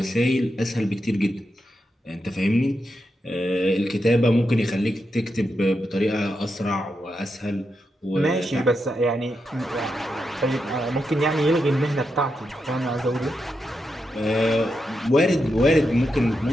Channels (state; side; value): normal; both; correlation 0.86